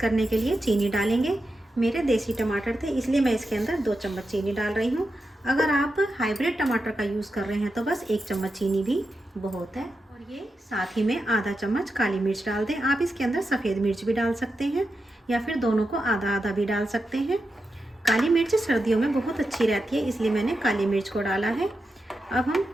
के लिए चीनी डालेंगे। मेरे देसी टमाटर थे इसलिए मैं इसके अंदर 2 चम्मच चीनी डाल रही हूँ। अगर आप हाइब्रिड टमाटर का यूज़ कर रहे हैं तो बस 1 चम्मच चीनी भी बहुत है। और ये साथ ही में आधा चम्मच काली मिर्च डाल दें। आप इसके अंदर सफ़ेद मिर्च भी डाल सकते हैं या फिर दोनों को आधा आधा भी डाल सकते हैं। काली मिर्च सर्दियों में बहुत अच्छी रहती है, इसलिए मैंने काली मिर्च को डाला है। अब हम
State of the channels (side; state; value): both; normal; correlation 0.88